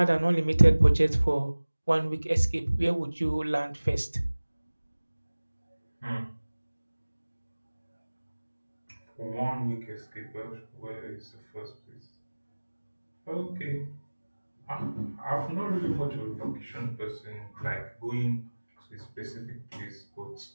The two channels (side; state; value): both; inverted; correlation -1.00